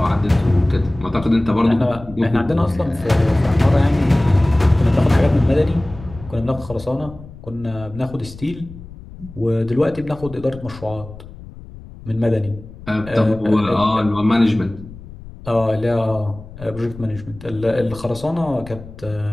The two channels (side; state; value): left; noise; rumble, 17 dB below the sound